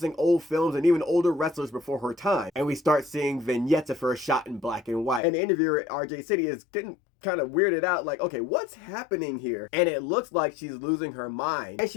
old films and even older wrestlers before her time. And we start seeing vignettes of her shot in black and white. And the interviewer at RJ City is getting kind of weirded out, like, okay, what's happening here? And it looks like she's losing her mind. And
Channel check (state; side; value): drops out; right; at 5.2 s